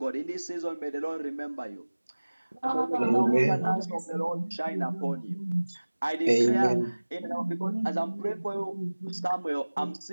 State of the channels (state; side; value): inverted; both; correlation -1.00